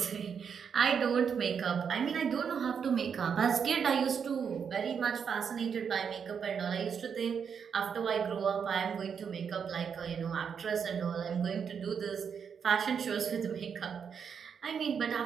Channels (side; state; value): left; quieter; 6.9 dB